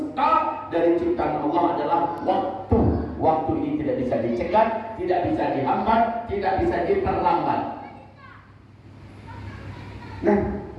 dari ciptaan Allah adalah waktu. Waktu ini tidak bisa dicegah, tidak bisa dihambat, tidak bisa diperlambat. Nah,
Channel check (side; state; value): both; identical; correlation 1.00